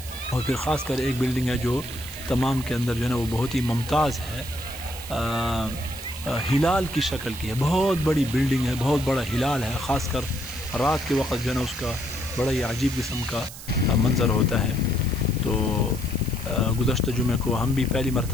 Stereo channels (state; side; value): noise; right; hiss, 14 dB below the sound